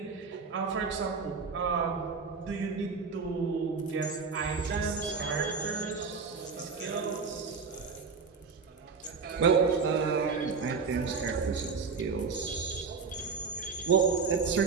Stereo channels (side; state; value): left; quieter; 5.0 dB